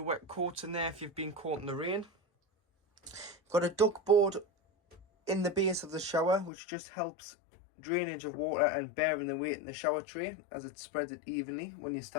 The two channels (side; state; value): right; drops out; at 6.5 s